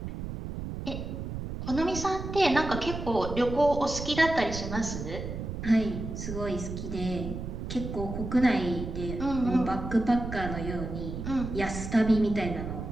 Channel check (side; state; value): right; noise; rumble, 6 dB below the sound